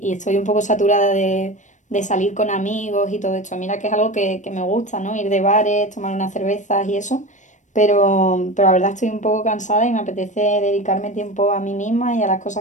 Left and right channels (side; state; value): right; late; 0.35 ms